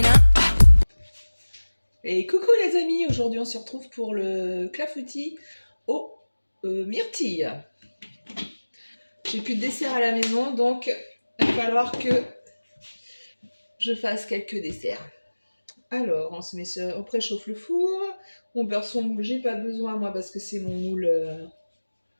Et coucou les amis, aujourd'hui on se retrouve pour le clafoutis aux myrtilles. J'ai plus de dessert à la maison, donc il va falloir que je fasse quelques desserts. Alors, on se met on préchauffe le four, on beurre son moule, j'ai pas besoin moi parce que c'est mon moule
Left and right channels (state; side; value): inverted; both; correlation -1.00